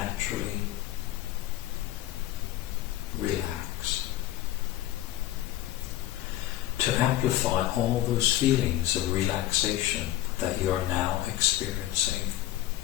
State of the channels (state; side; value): quieter; right; 14.8 dB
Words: relax, to amplify all those feelings of relaxation that you are now experiencing.